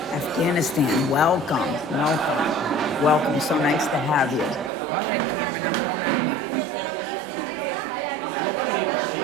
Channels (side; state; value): left; drops out; at 4.7 s